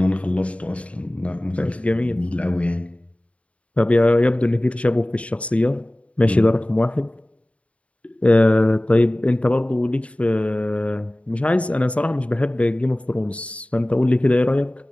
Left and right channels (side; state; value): right; late; 0.063 ms